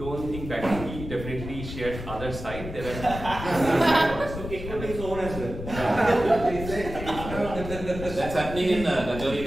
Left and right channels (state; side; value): noise; left; rumble, 9 dB below the sound